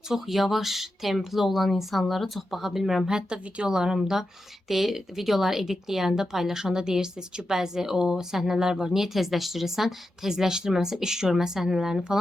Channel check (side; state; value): both; normal; correlation 0.89